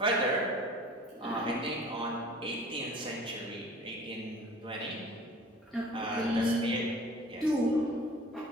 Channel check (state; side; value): normal; both; correlation 0.46